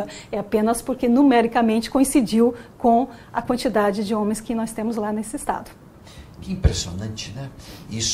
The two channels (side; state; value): both; identical; correlation 1.00